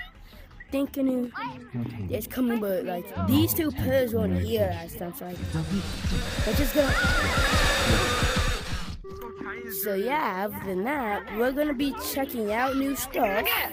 thinking it's coming, but these 2 pairs weren't here last time, so we're just gonna. So yeah, other than that, we're gonna be checking out new stuff.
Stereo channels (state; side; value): identical; both; correlation 1.00